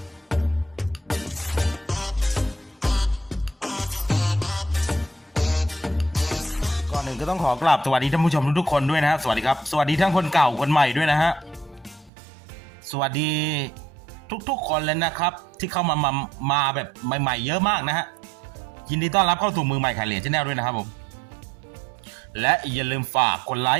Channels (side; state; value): left; drops out; at 12.1 s